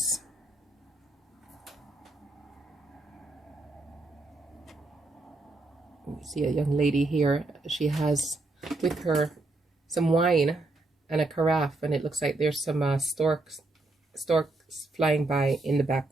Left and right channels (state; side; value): quieter; left; 3.0 dB